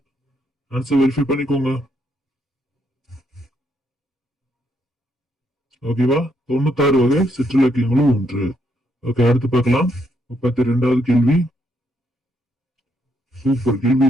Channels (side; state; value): both; normal; correlation 0.75